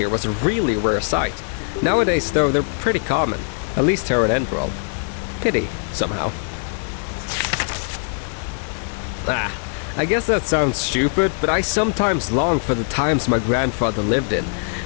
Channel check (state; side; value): silent; right; digital silence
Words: was a really rare sight. Nowadays, though, they're pretty common, at least here in Enderal. Pity, somehow. I guess that sounds stupid, but I sometimes long for the times my grandfather lived in.